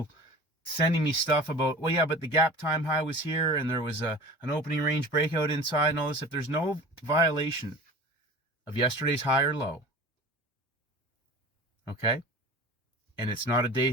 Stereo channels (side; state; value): both; normal; correlation 0.38